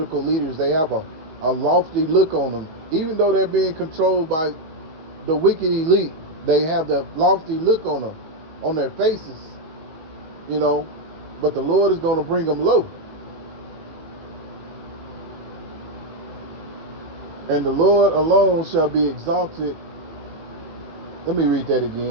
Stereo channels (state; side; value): late; left; 19 ms